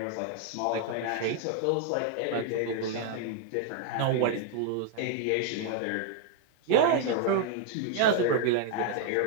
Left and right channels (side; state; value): both; different; correlation 0.00